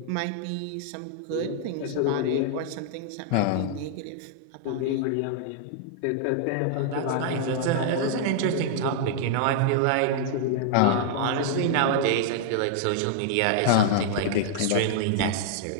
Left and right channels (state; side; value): different; both; correlation -0.01